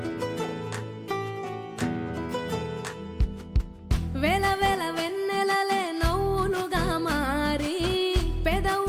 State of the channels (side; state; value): both; identical; correlation 1.00